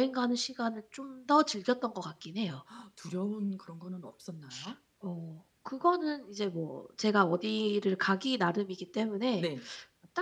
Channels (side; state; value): both; identical; correlation 1.00